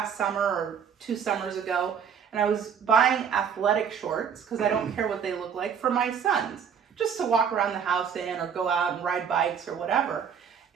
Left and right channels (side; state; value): left; quieter; 7.4 dB